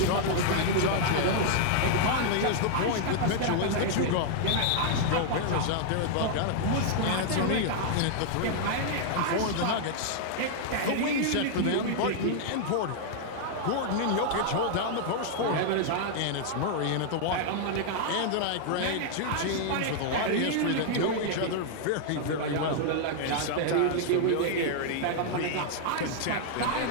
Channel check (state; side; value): different; both; correlation -0.01